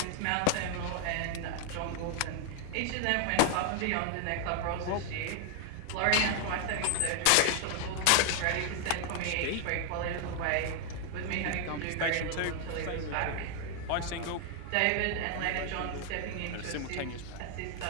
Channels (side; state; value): both; different; correlation 0.00